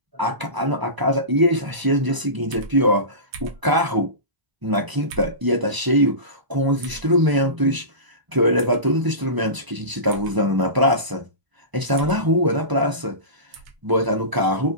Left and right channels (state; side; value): late; left; 1.0 ms